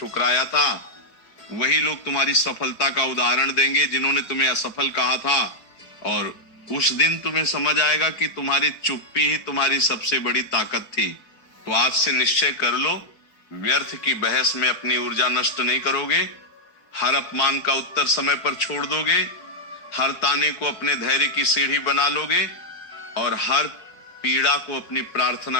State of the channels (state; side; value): late; right; 4.5 ms